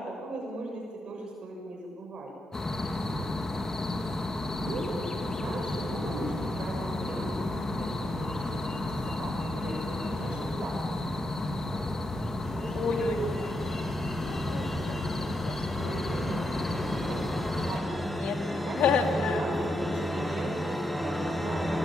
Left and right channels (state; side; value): normal; both; correlation 0.83